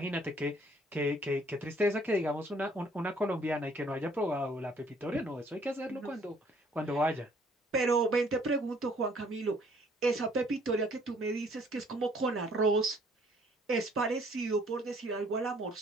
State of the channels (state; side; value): normal; both; correlation 0.60